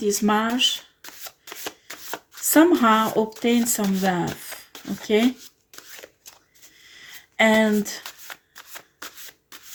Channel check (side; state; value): both; identical; correlation 1.00